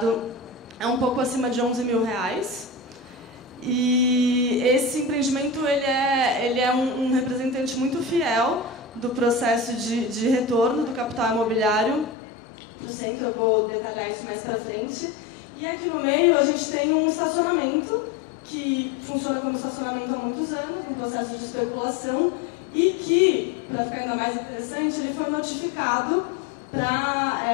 é um pouco acima de R$11 mil. E esse empreendimento ele é um representante muito fiel do processo de retorno do capital imobiliário para o centro. Eu vou detalhar isso mais para frente. E aqui no meio a gente tem um estacionamento que funciona como estacionamento há muitos anos, num processo de especulação, e que, para ficar ainda mais interessante, ele foi notificado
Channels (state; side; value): drops out; right; at 12.2 s